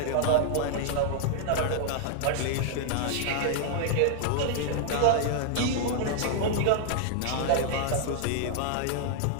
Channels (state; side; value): different; both; correlation -0.01